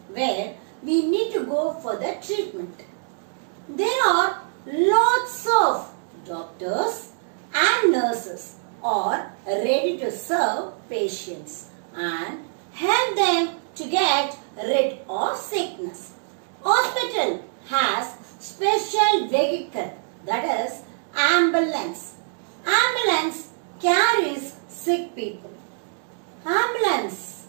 where we need to go for the treatment. There are lots of doctors and nurses are ready to serve patients and help them to get rid of sickness. Hospital has special vehicle, that is ambulance. Ambulance carries sick people. Ambulance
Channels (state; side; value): silent; left; digital silence